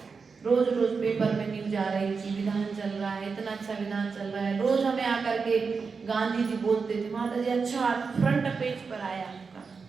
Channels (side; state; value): left; quieter; 5.1 dB